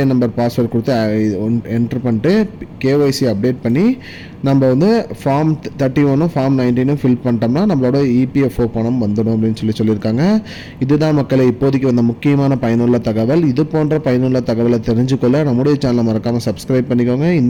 நம்பர் பாஸ்வேர்டு கொடுத்து என்ட்ரு பண்ணிட்டு கேஒய்சி அப்டேட் பண்ணி நம்ம ஃபார்ம் 31 ஃபார்ம் 19 ஃபில் பண்ணிட்டோம்னா நம்மளோட இபிஎஃப்ஓ பணம் வந்துடும் அப்படின்னு சொல்லியிருக்காங்க. இதுதான் மக்களை இப்போதைக்கு வந்த முக்கியமான பயனுள்ள தகவல். இது போன்ற பயனுள்ள தகவலை தெரிஞ்சுக்கொள்ள நம்முடைய சேனலை மறக்காமல் சப்ஸ்கிரைப் பண்ணிக்கோங்க.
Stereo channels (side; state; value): both; identical; correlation 1.00